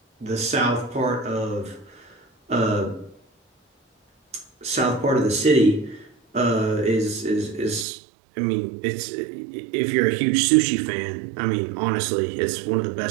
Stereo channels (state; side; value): drops out; left; at 7.9 s